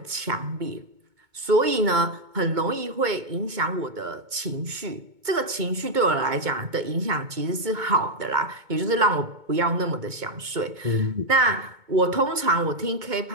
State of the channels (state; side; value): late; left; 2.2 ms